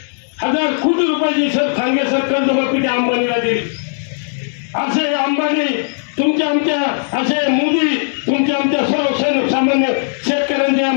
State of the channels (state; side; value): silent; right; digital silence